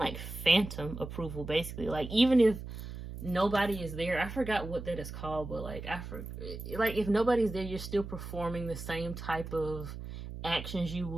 phantom approval, basically. Like even if nobody is there, I forgot what that is called, but like like if nobody's there, you're still performing the same type of actions you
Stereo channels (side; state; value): right; noise; hum, 9 dB below the sound